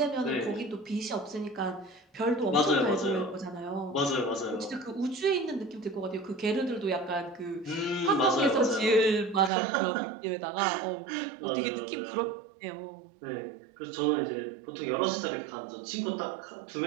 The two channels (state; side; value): drops out; left; at 9.5 s